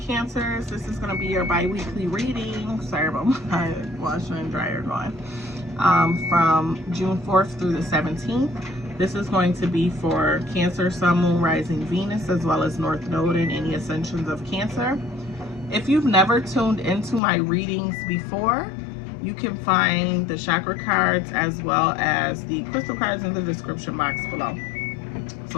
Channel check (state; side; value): drops out; right; at 17.2 s